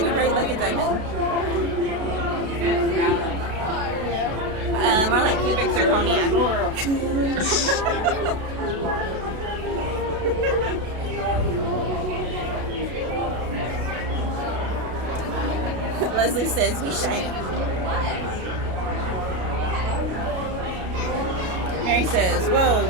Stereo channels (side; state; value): left; late; 32 ms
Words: bright like a diamond. More like cubic zirconia. Leslie says, we shine. Mary says, whoa,